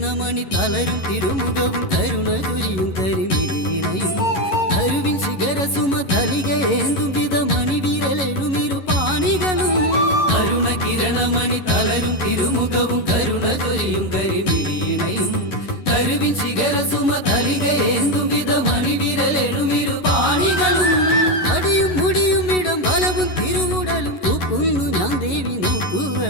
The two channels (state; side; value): late; right; 11 ms